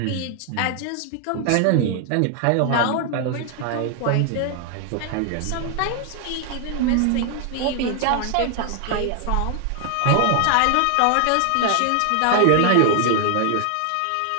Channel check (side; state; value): both; different; correlation 0.00